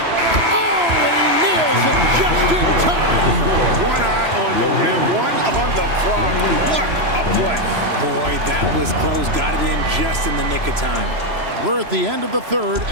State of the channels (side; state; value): left; late; 3.0 ms